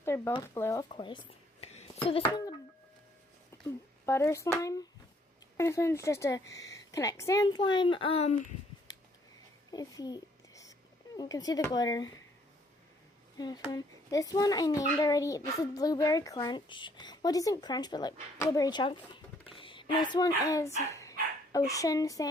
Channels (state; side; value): normal; both; correlation 0.65